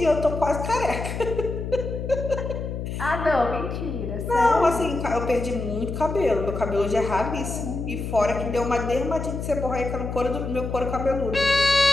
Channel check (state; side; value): noise; left; hum, 5 dB below the sound